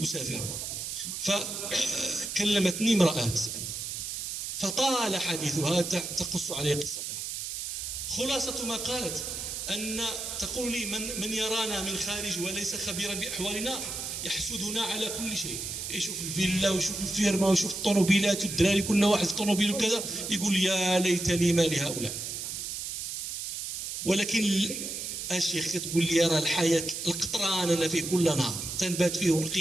فكلمتني امرأة فطال حديثها تقص علي قصتها. خلاصة ما قالت أن تقول لي من يرانا من خارج وليس خبيرا بأحوالنا يحسدنا على كل شيء، يشوف الفيلا ويشوف الفيرما ويشوف الطوموبيلات والدراري كل واحد في طوموبيل وكذا، يقول يا ليت لي ما لهؤلاء. ولكن الشيخ تقول لي راه الحياة القطران أنا فيه كل نهار تنبات فيه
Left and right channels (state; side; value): noise; right; hiss, 5 dB below the sound